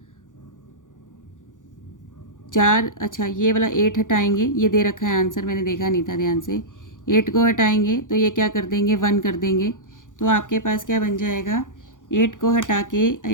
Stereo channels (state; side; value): late; right; 0.87 ms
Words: 4, अच्छा ये वाला 8 हटाएंगे, ये दे रखा है आंसर, मैंने देखा नहीं था ध्यान से। 8 को हटाएंगे तो ये क्या कर देंगे, 1 कर देंगे। तो आपके पास क्या बन जाएगा, 8 को हटा के